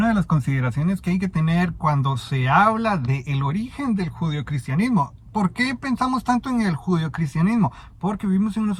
de las consideraciones que hay que tener cuando se habla del origen del judeocristianismo. ¿Por qué pensamos tanto en el judeocristianismo? Porque vivimos en una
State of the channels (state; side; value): identical; both; correlation 1.00